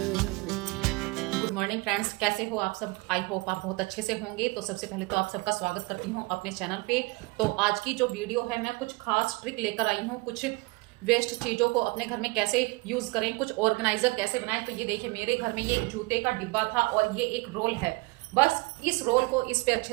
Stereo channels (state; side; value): quieter; left; 25.4 dB